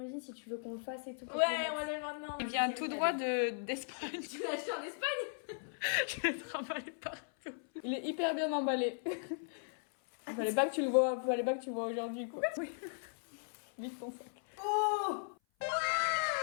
si tu veux qu'on le fasse et tout. Ouais, on va aller maintenant. Il vient tout droit d'Espagne. Tu l'as acheté en Espagne? Je vais te remballer partout. Il est hyper bien emballé. Fallait pas que tu le vois aujourd'hui, quoi. Oui. Vite ton sac. Oh!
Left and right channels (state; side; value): silent; right; 53 dB below the other